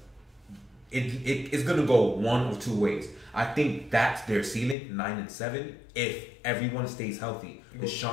it's going to go one of two ways. I think that's their ceiling, 9-7. If everyone stays healthy,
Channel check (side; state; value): right; drops out; at 4.8 s